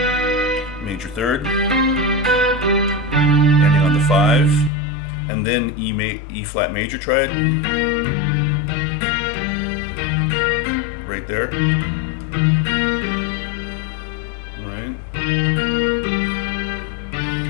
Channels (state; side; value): drops out; right; at 4.7 s